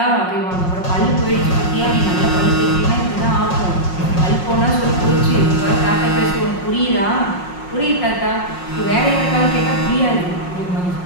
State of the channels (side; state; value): right; late; 5.5 ms